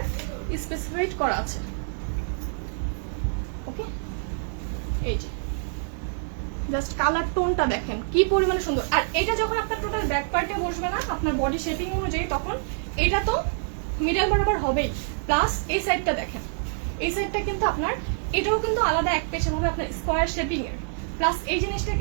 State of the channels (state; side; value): silent; left; digital silence